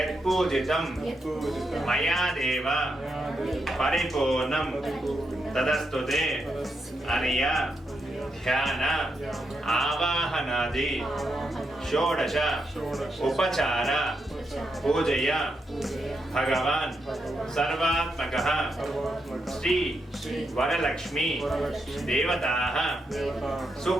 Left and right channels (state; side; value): normal; both; correlation 0.83